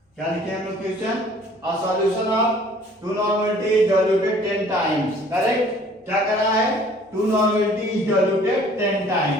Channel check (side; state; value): both; normal; correlation 0.54